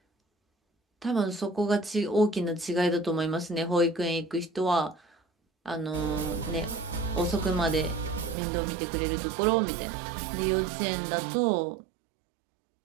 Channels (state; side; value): drops out; left; at 8.3 s